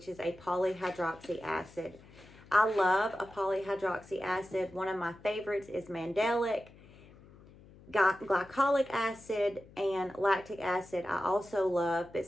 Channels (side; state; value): left; noise; hum, 23 dB below the sound